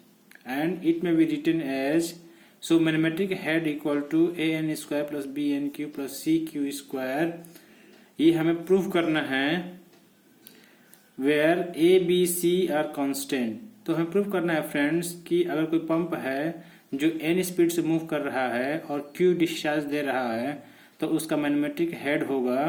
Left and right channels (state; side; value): identical; both; correlation 1.00